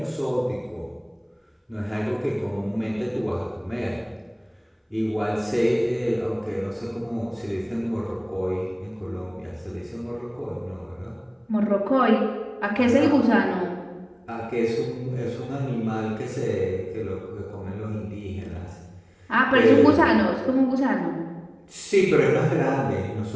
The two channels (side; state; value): both; identical; correlation 1.00